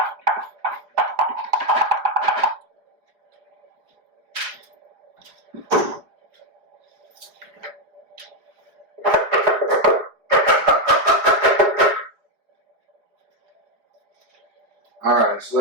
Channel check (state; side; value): late; left; 4.8 ms